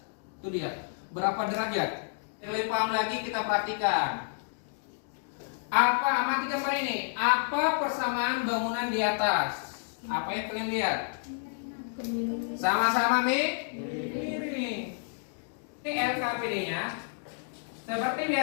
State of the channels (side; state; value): right; silent; digital silence